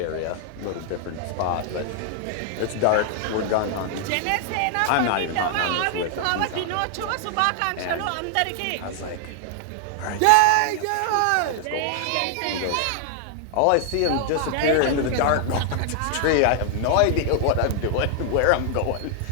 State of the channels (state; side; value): different; both; correlation 0.00